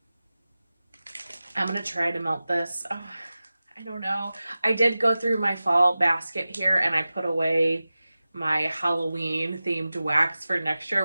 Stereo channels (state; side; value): inverted; both; correlation -0.96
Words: I'm going to try to melt this. Oh, I don't know. I did go through my fall basket here and I put away my Halloween themed wax for next year,